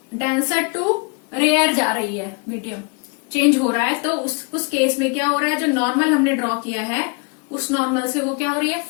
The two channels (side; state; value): right; quieter; 33.0 dB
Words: डेंसर टू रेयर जा रही है, मीडियम चेंज हो रहा है। तो उस केस में क्या हो रहा है, जो नॉर्मल हमने ड्रॉ किया है उस नॉर्मल से वो क्या हो रही है,